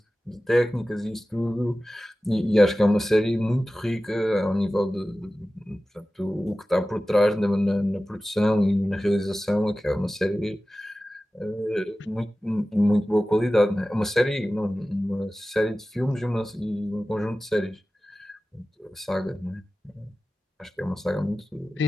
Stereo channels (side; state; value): both; normal; correlation 0.96